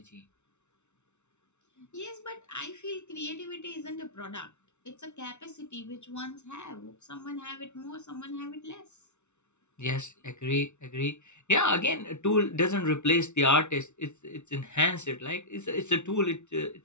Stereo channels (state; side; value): late; right; 0.82 ms